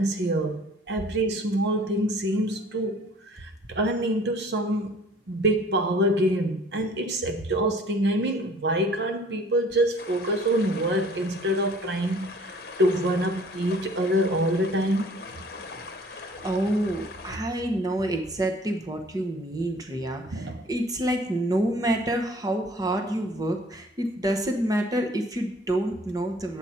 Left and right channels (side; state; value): both; normal; correlation 0.52